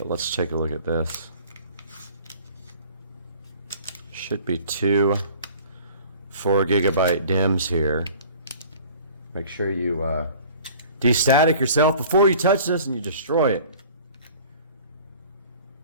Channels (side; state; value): both; inverted; correlation -0.47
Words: let's take a look at this. Should be 2 4 gigabyte DIMMs here. Make sure you destatic yourself before you touch this and you destroy it.